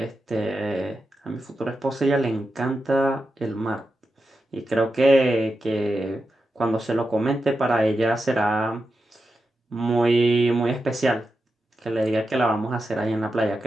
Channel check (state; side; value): normal; both; correlation 0.89